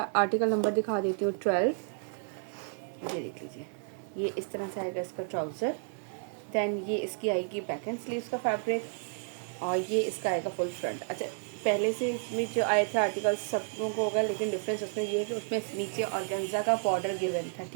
आर्टिकल नंबर दिखा देती हूँ 12। ये देख लीजिए, ये इस तरह से आएगा इसका ट्राउज़र। दैन ये इसकी आएगी बैक एंड स्लीव्स का फैब्रिक, और ये इसका आएगा फुल फ्रंट। अच्छा, पहले से इसमें जो आए थे आर्टिकल सब लोगों को होगा, लेकिन डिफरेंस उसमें ये है कि उसमें नीचे ऑर्गेन्जा का बॉर्डर गिवन था।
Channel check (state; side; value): silent; left; 57 dB below the other